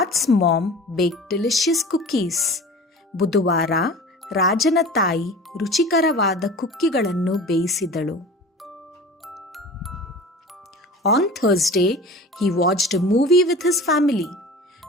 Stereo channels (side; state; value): both; normal; correlation 0.38